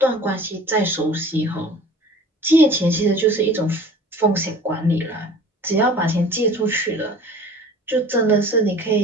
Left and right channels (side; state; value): both; normal; correlation 0.44